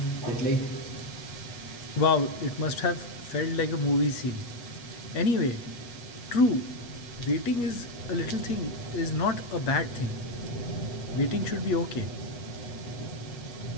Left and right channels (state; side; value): late; right; 8.3 ms